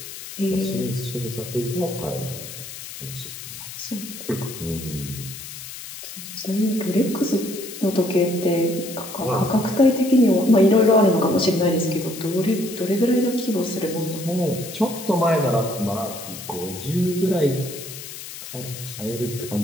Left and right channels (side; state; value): left; noise; hiss, 11 dB below the sound